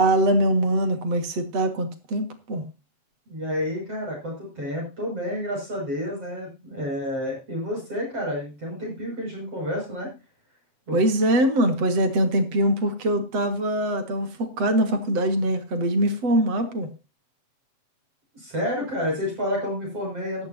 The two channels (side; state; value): left; late; 7.9 ms